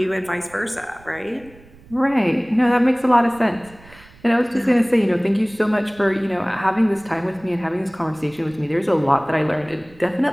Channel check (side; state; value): right; noise; rumble, 24 dB below the sound